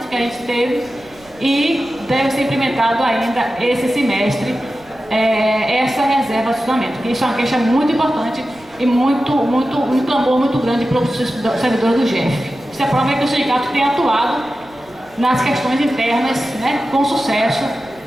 que a gente teve e deve ser implementado ainda esse semestre, essa reserva de estacionamento, que isso é uma queixa muito importante e um clamor muito grande para os servidores do GEF. Isso é prova que o sindicato tem atuado nas questões internas, né, com sucesso,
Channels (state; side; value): noise; right; rumble, 28 dB below the sound